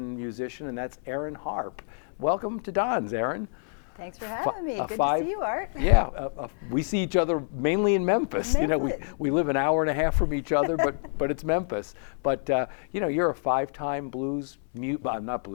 musician, and that's Erin Harpe. Welcome to Don's, Erin. Thanks for having me. Good to see you, Art. Yeah, we see each other mainly in Memphis. You know, we live an hour and a half from each other, but it's Memphis. But you know, you're a five-time Boston.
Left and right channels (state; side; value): silent; right; 60 dB below the other